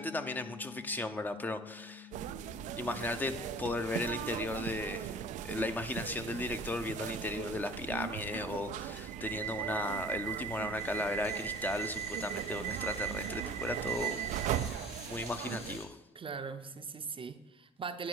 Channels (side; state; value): both; normal; correlation 0.46